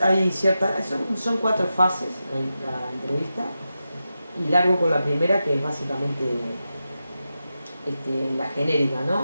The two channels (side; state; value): both; inverted; correlation -0.91